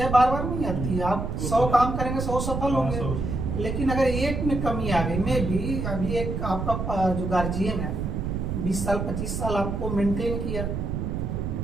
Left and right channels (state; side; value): noise; right; rumble, 2 dB below the sound